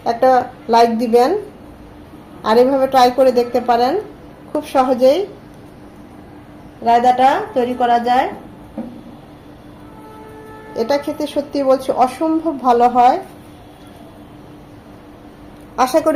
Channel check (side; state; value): both; identical; correlation 1.00